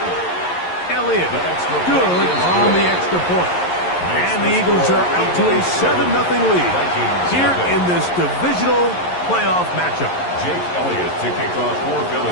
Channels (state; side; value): late; right; 11 ms